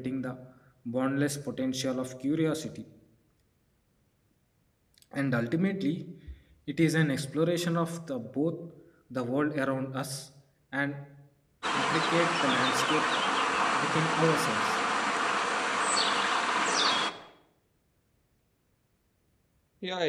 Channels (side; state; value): both; identical; correlation 1.00